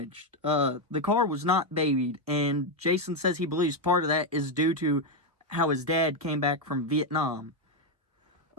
The car was not babied, and Jason says he believes part of that is due to how his dad came back from Vietnam.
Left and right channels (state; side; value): late; left; 1.3 ms